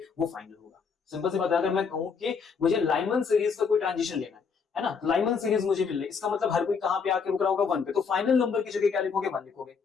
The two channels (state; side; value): quieter; right; 5.7 dB